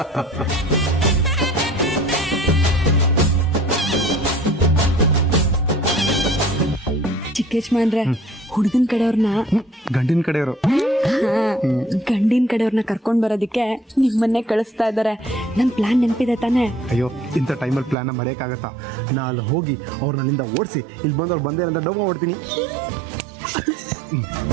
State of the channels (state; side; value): drops out; left; at 17.9 s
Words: ಚಿಕ್ಕೇಶ್ಮಾನ್ರೆ, ಹುಡುಗನ ಕಡೆಯವ್ರನ್ನ, ಗಂಡಿನ ಕಡೆಯವರು, ಗಂಡಿನ ಕಡೆಯವ್ರನ್ನ ಕರ್ಕೊಂಡ್ ಬರೋದಕ್ಕೆ ನಿಮ್ಮನ್ನೇ ಕಳಿಸ್ತಾ ಇದ್ದಾರೆ. ನನ್ ಪ್ಲಾನ್ ನೆನಪಿದೆ ತಾನೆ? ಅಯ್ಯೋ, ಇಂಥ ಟೈಮಲ್ಲಿ ಪ್ಲಾನ್ನ ಮರೆಯೋಕ್ಕಾಗತ್ತಾ? ನಾ ಅಲ್ಲಿ ಹೋಗಿ ಅವ್ರನ್ನ ಅಲ್ಲಿಂದ ಓಡಿಸಿ ಇಲ್ಲಿ ಬಂದು ಅವ್ರು ಬಂದೇ ಅಂತ ಡೌ ಮಾಡ್ತೀನಿ.